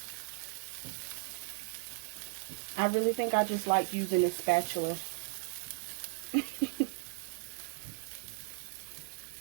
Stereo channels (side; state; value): left; silent; 54 dB below the other